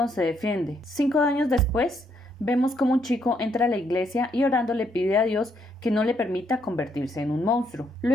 se defiende. 5 años después, vemos como un chico entra a la iglesia y orando le pide a Dios que no le permita convertirse en un monstruo.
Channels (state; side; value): normal; both; correlation 0.73